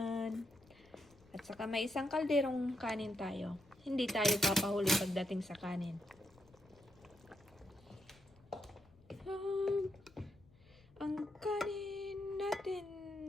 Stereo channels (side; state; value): left; noise; rumble, 27 dB below the sound